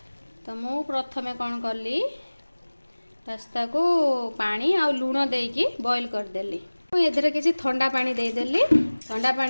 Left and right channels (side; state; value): both; inverted; correlation -1.00